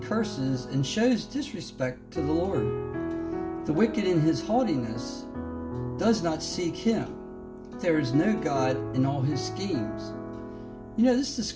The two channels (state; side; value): identical; both; correlation 1.00